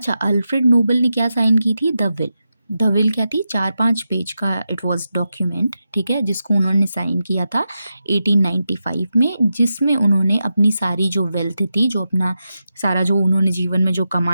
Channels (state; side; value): inverted; both; correlation -0.89